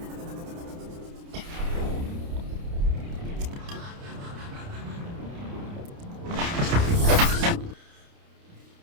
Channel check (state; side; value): late; left; 29 ms